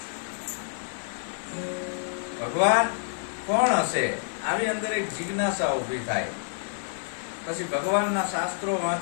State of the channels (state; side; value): silent; right; digital silence